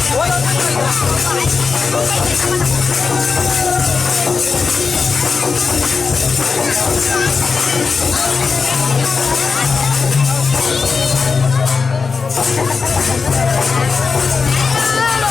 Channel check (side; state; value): right; quieter; 4.9 dB